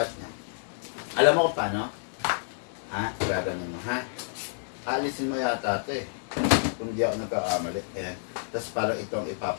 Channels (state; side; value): silent; right; 59 dB below the other